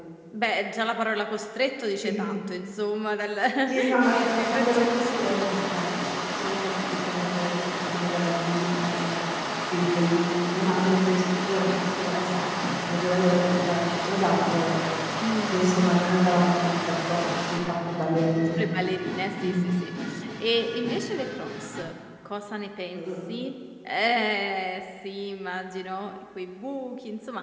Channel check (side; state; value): both; identical; correlation 1.00